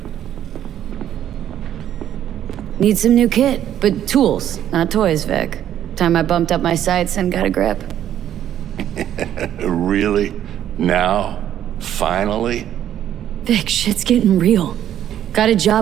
Need some new kit, but tools, not toys, Vic. Time I bumped up my sights and got a grip. Really? Now? Finally? Vic, shit's getting real. Got a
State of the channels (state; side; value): quieter; left; 10.9 dB